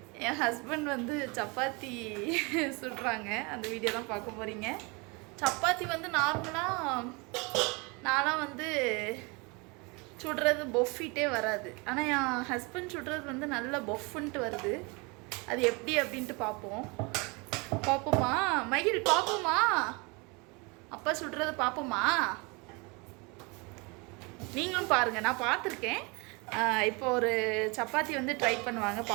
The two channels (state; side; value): quieter; left; 28.9 dB